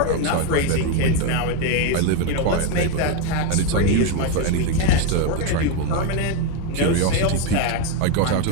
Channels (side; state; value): both; different; correlation 0.02